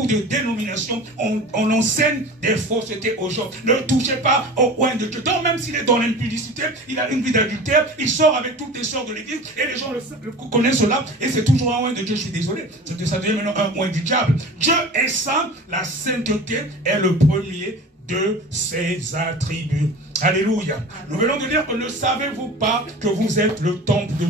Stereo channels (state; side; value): normal; both; correlation 0.37